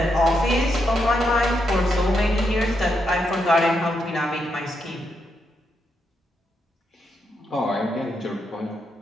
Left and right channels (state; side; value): normal; both; correlation 0.81